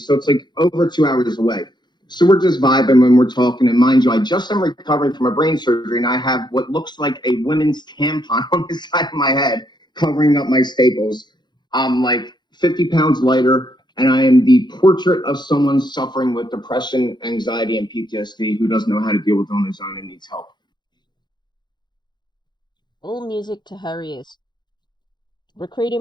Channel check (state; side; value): late; right; 0.21 ms